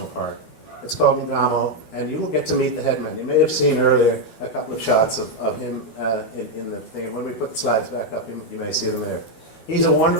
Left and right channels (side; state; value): right; late; 12 ms